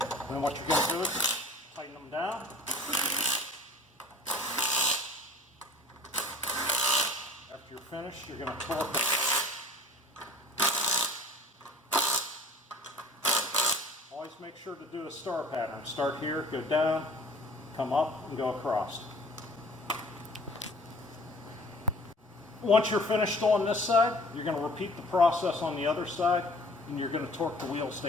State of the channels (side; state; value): both; normal; correlation 0.47